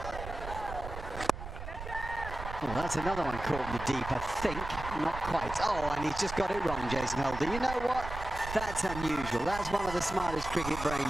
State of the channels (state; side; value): noise; right; rumble, 9 dB below the sound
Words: Oh, that's another one caught in the deep, I think. Not quite. Oh, and he's just got it wrong, Jason Holder. You know what? That's unusual. That's one of the smartest cricket